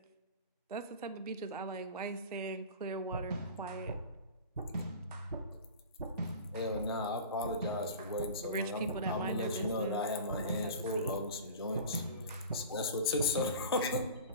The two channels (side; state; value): both; inverted; correlation -0.36